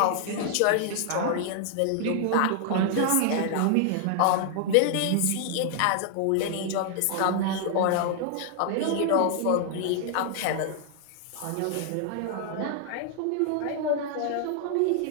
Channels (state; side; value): different; both; correlation 0.00